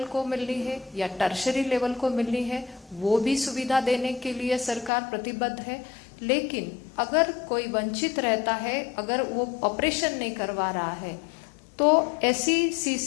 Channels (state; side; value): drops out; right; at 4.9 s